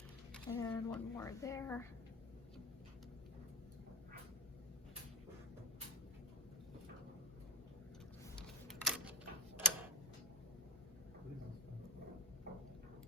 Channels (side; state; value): both; normal; correlation 0.17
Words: And one more there.